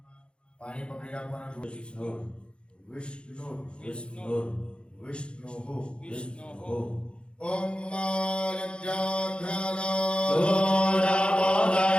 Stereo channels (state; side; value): late; right; 0.056 ms